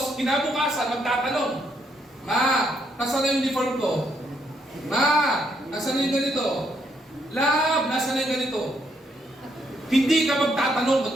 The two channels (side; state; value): both; normal; correlation 0.74